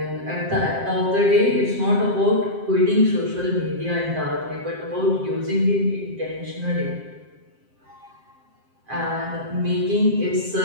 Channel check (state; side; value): late; left; 7.6 ms